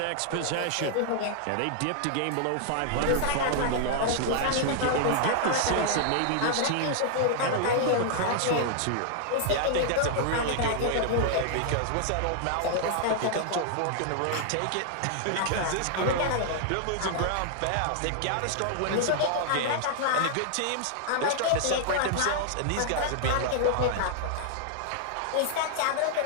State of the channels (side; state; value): both; different; correlation -0.01